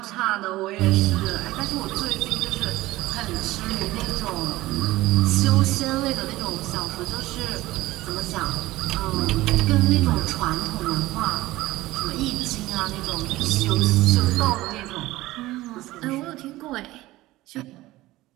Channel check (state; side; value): quieter; left; 17.7 dB